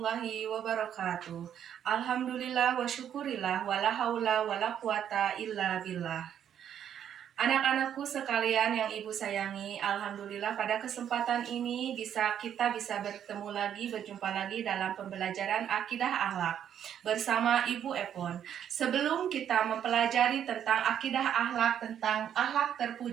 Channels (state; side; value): quieter; left; 9.4 dB